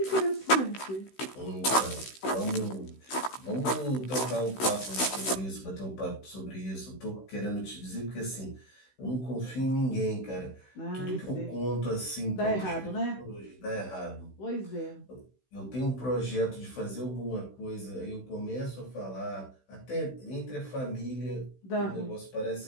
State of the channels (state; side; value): late; right; 16 ms